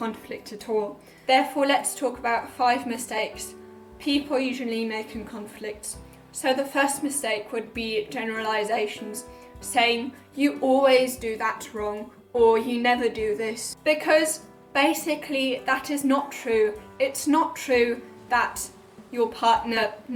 at all. Therefore, let's talk about 5 mistakes people usually make in conflicts. So the first mistake would be generalisations, saying you always do that wrong or you never do this. Because basically that is not true. It's not true that your partner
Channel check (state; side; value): identical; both; correlation 1.00